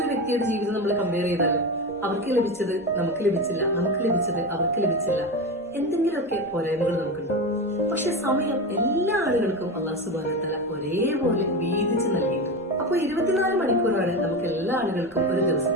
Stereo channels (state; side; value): normal; both; correlation 0.20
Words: വ്യക്തിയുടെ ജീവിതം നമ്മൾ കമ്പയർ ചെയ്താലും അവർക്ക് ലഭിച്ചത് നമുക്ക് ലഭിച്ചില്ല, നമുക്ക് ലഭിച്ചത് അവർക്ക് ലഭിച്ചില്ല, എന്തെങ്കിലുമൊക്കെ പോരായ്മകൾ നമുക്കുണ്ടാവും. പക്ഷെ സമയം എല്ലാ ആളുകൾക്കും അല്ലാഹു സുബ്ഹാനഹു വ തആല ഒരേപോലെ വീതിച്ച് നൽകിയിട്ടുണ്ട്. അപ്പൊ 24 മണിക്കൂറാണ് നമുക്ക് എല്ലാ ആളുകൾക്കും ഒരു